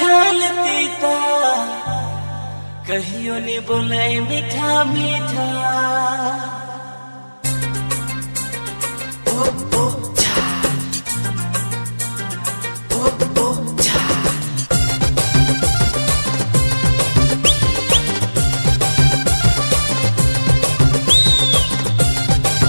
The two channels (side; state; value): both; inverted; correlation -1.00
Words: ता, कहियो ने बोले मीठा मीठा।